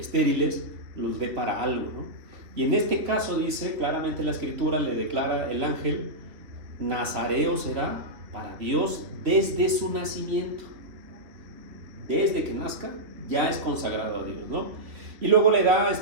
los dé para algo, ¿no? Y en este caso dice claramente la escritura, le declara el ángel: nazareo será para Dios desde su nacimiento. Desde que nazca ya es consagrado a Dios, ¿no? Y luego le da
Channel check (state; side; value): late; left; 3.2 ms